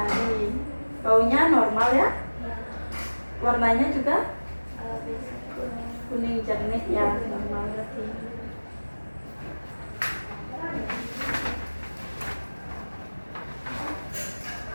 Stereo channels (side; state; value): both; inverted; correlation -1.00